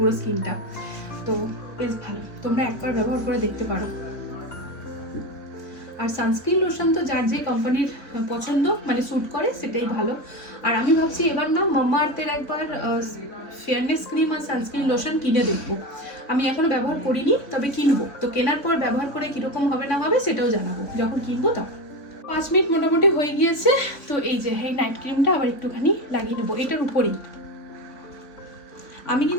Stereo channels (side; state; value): right; late; 3.7 ms